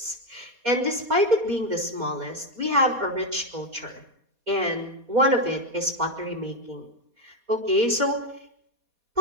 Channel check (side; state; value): left; late; 4.2 ms